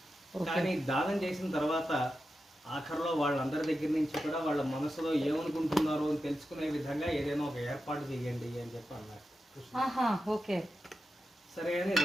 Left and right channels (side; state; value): both; normal; correlation 0.90